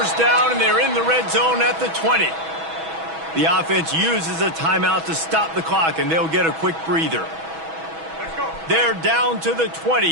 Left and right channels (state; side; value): late; left; 6.2 ms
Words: down, and they're in the red zone at the 20. The offense uses a timeout to stop the clock, and they'll get a quick breather. They're down to the